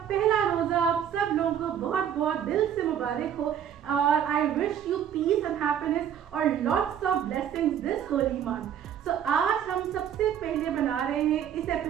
पहला रोज़ा आप सब लोगों को बहुत बहुत दिल से मुबारक हो और I wish you peace and happiness और lots of blessings this holy month. तो आज हम सबसे पहले बना रहे हैं इस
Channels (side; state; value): left; quieter; 9.2 dB